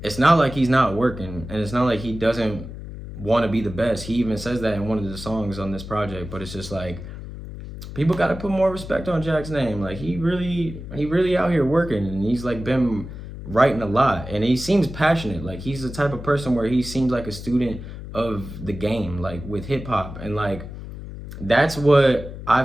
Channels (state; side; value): noise; left; hum, 11 dB below the sound